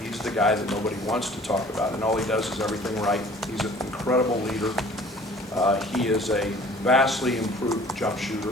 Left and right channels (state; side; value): normal; both; correlation 0.50